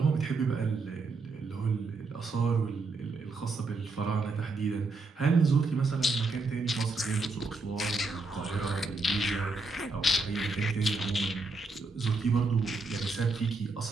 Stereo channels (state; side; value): quieter; left; 3.6 dB